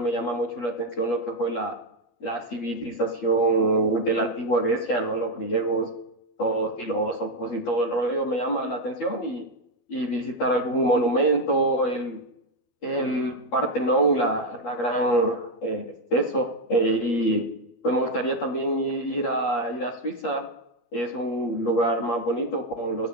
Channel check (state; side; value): late; right; 12 ms